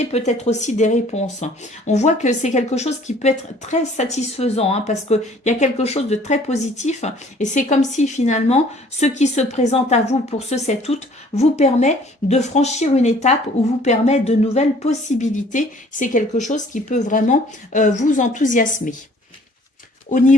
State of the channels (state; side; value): normal; both; correlation 0.56